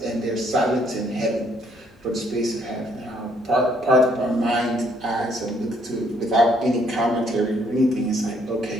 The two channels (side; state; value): both; normal; correlation 0.67